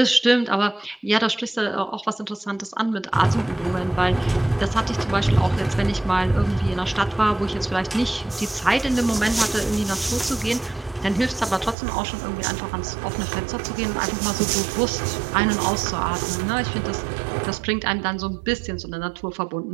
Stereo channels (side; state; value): left; drops out; at 11.8 s